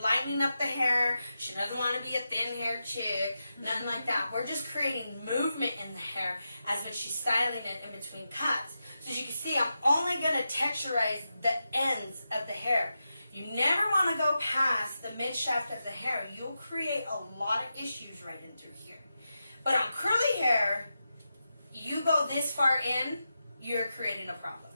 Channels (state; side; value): inverted; both; correlation -0.89